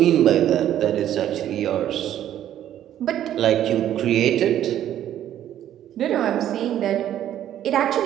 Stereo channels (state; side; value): quieter; left; 11.4 dB